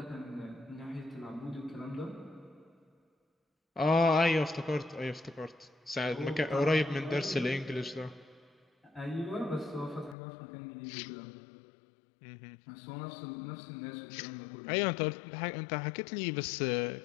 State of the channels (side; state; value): right; drops out; at 10.2 s